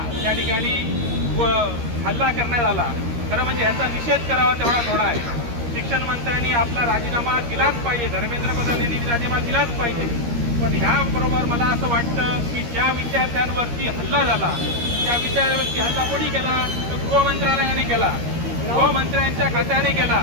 त्या ठिकाणी हल्ला करण्यात आला. खरं म्हणजे ह्याचा निषेध करावा तेवढा थोडा आहे. शिक्षण मंत्र्यांनी आपला राजीनामा दिलाच पाहिजे, धर्मेंद्र प्रधान यांनी राजीनामा दिलाच पाहिजे. पण ह्याबरोबर मला असं वाटतं की ज्या विद्यार्थ्यांवरती हल्ला झाला त्या विद्यार्थ्यांवरती हल्ला कोणी केला तर गृहमंत्रालयाने केला, गृहमंत्र्यांच्या खात्याने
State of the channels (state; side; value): late; left; 13 ms